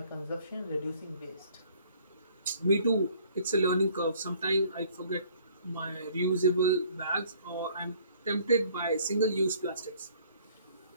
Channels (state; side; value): inverted; both; correlation -0.58